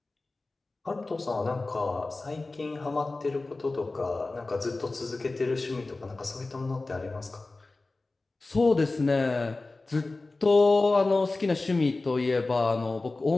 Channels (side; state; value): right; quieter; 3.3 dB